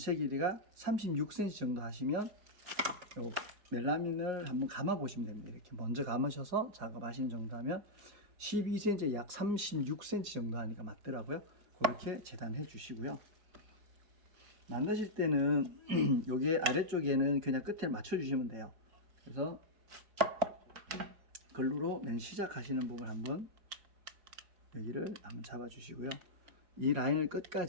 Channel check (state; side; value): late; left; 4.9 ms